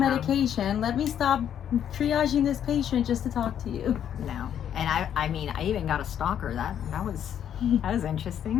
medication, let me stop triaging this patient just to talk to you. No. And I mean, I even got a stalker. That was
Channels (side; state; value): right; quieter; 9.5 dB